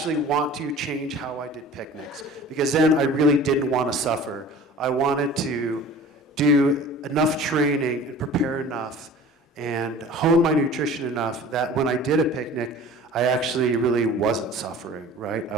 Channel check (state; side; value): normal; both; correlation 0.43